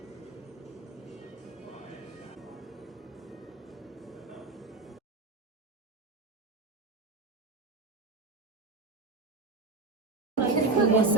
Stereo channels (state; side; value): quieter; left; 3.5 dB